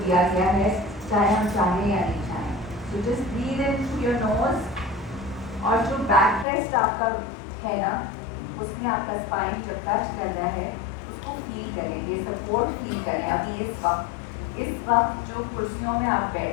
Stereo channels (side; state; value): right; drops out; at 6.5 s